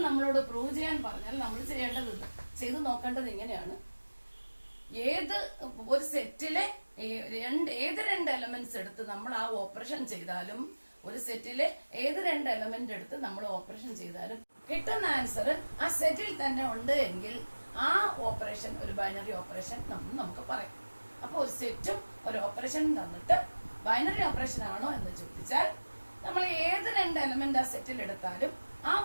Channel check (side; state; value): both; inverted; correlation -1.00